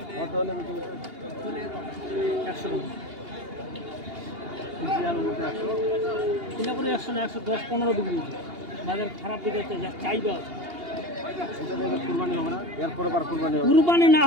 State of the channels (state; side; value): late; left; 2.8 ms